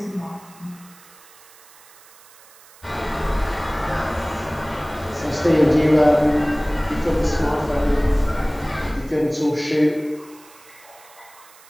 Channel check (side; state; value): right; noise; hiss, 24 dB below the sound